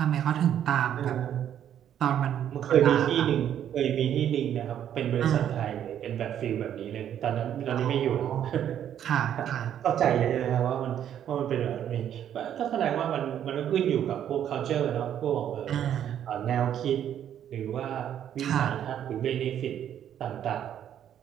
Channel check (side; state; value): left; quieter; 10.1 dB